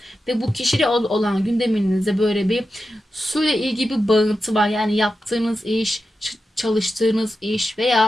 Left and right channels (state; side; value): normal; both; correlation 0.91